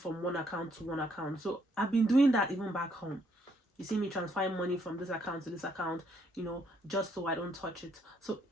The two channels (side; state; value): both; normal; correlation 0.70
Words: one account to one account. So I've been doing that even back home. You see me transferring money from this account to this account, just so I don't touch it. So